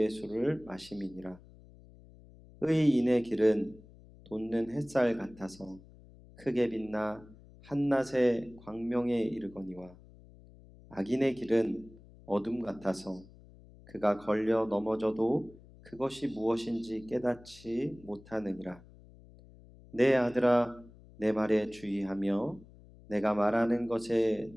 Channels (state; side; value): noise; left; hum, 22 dB below the sound